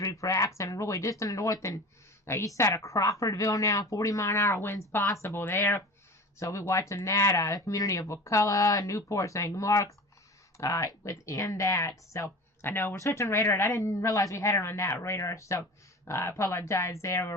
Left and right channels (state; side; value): normal; both; correlation 0.36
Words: for accident really just in the north and east side of Crawfordville now. 40-mile-an-hour winds possible there. So we're watching that. The community of Wakulla, Newport, St. Mark's within that. So I know we're switching radar, and I didn't realize we had it on that radar, so I apologize there. We're